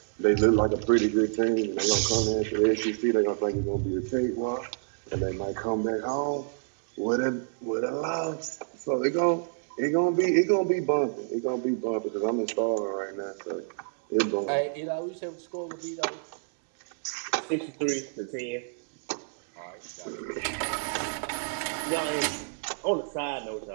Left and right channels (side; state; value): left; silent; digital silence